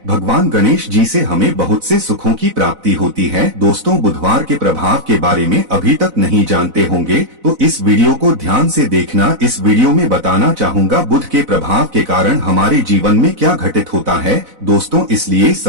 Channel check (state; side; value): late; left; 4.0 ms